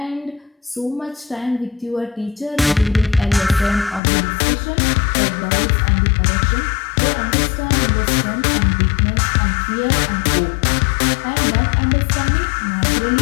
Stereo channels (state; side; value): drops out; right; at 4.0 s